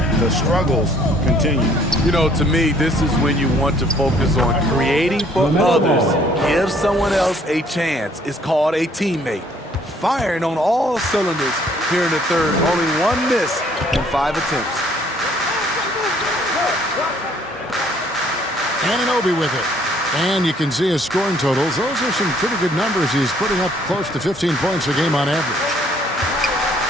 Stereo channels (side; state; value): both; normal; correlation 0.62